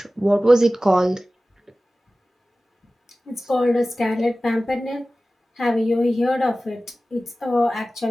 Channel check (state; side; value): normal; both; correlation 0.96